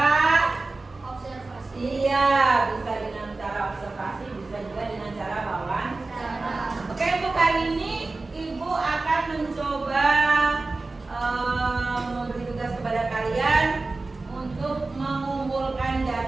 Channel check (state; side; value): quieter; left; 3.4 dB